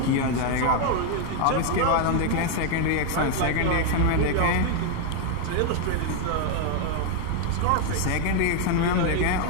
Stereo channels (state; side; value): different; both; correlation 0.01